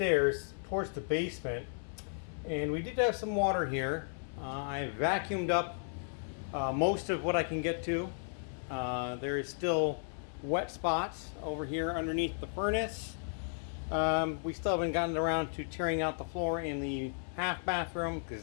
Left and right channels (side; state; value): right; silent; 55 dB below the other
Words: towards the basement, and we did have some water here. I vacuumed up most of what I can get to. There is still wet spots over here underneath the furnace. We still haven't gotten around to tearing out the floor in the half bathroom